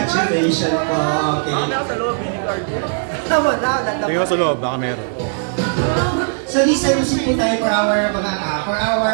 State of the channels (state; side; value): silent; left; digital silence